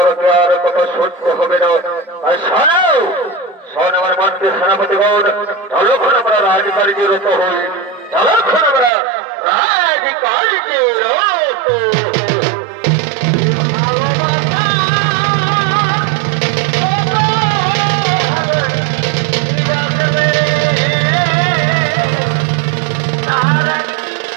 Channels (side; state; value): left; drops out; at 8.9 s